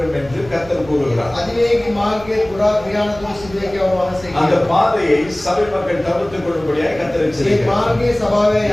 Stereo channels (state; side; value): noise; right; rumble, 19 dB below the sound